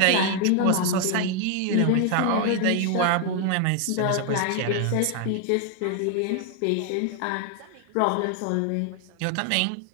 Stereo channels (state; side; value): different; both; correlation 0.00